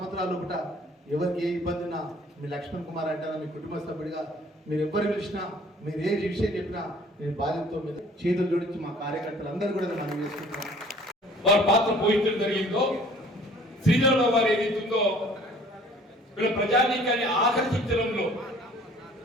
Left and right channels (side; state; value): both; normal; correlation 0.53